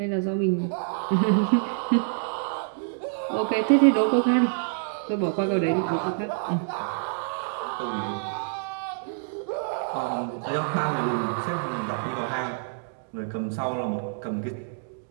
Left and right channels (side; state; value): left; silent; digital silence